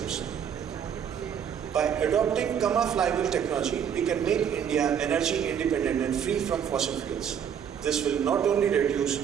By adopting Gamma flywheel technology, we can make India energy independent and free from fossil fuels. This will not only reduce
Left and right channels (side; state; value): left; quieter; 8.3 dB